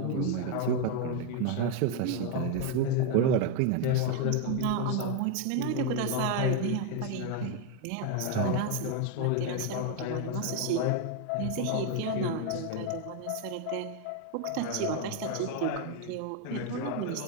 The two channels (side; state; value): both; different; correlation 0.01